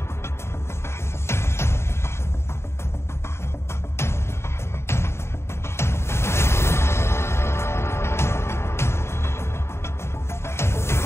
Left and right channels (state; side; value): late; right; 0.13 ms